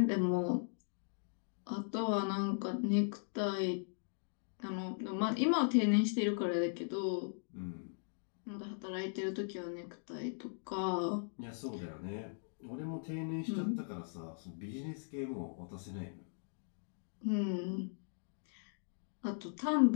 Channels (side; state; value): right; silent; digital silence